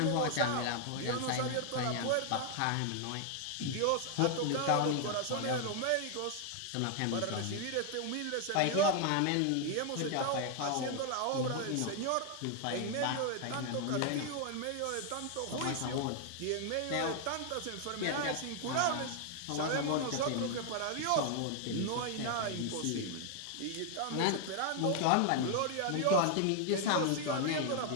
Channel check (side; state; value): both; different; correlation 0.00